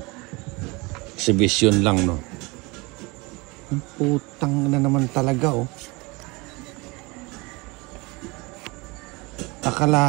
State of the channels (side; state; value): left; quieter; 25.5 dB